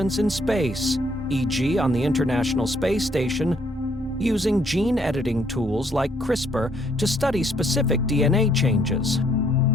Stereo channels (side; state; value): both; normal; correlation 0.67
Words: in space, e.g. on the International Space Station, using gene editing tools like CRISPR to study specific DNA changes,